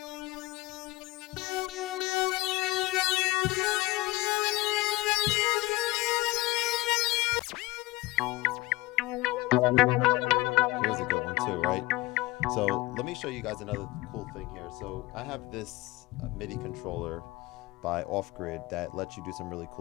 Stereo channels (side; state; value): right; quieter; 20.6 dB